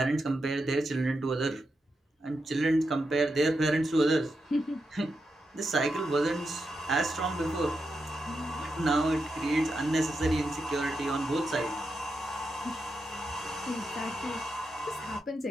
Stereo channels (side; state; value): both; normal; correlation 0.86